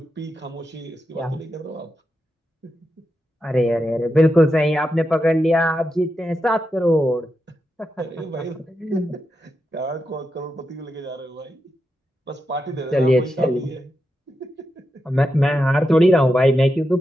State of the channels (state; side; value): normal; both; correlation 0.87